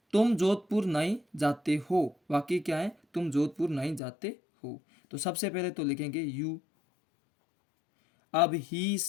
तुम जोधपुर नहीं जाते हो। वाक्य क्या है, तुम जोधपुर नहीं जाते हो। तो सबसे पहले तो लिखेंगे यू। अब ही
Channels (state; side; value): drops out; right; at 4.0 s